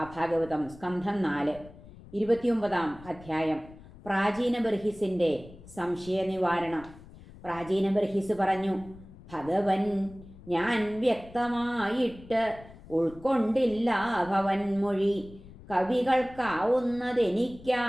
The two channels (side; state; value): left; noise; rumble, 19 dB below the sound